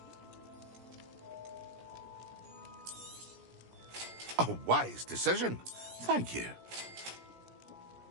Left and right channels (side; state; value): left; late; 17 ms